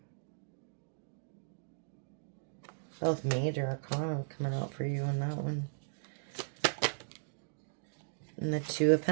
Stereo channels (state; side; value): silent; left; digital silence